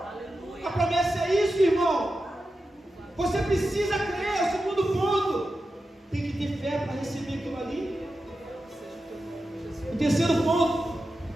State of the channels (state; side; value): normal; both; correlation 0.91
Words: A promessa é isso, irmão. Você precisa crer. É o segundo ponto. Tem que ter fé para receber aquilo ali. O terceiro ponto